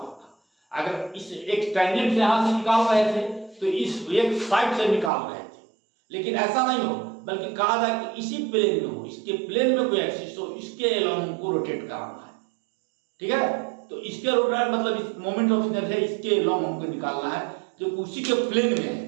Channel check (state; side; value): drops out; left; at 5.1 s